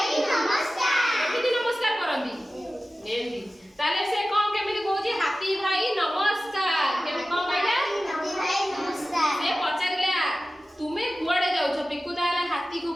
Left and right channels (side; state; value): both; normal; correlation 0.95